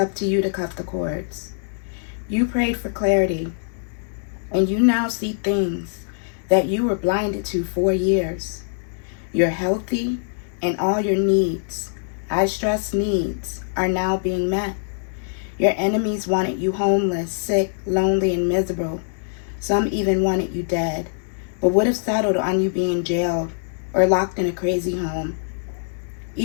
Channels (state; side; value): silent; right; digital silence